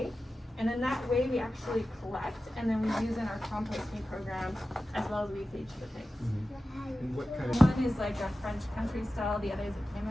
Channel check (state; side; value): normal; both; correlation 0.94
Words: And then that whey we actually collect and then we use in our composting program as well as we feed to the pigs. One is like a French country style, the other is a